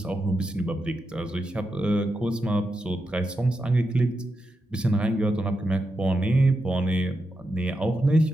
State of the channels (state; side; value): normal; both; correlation 0.86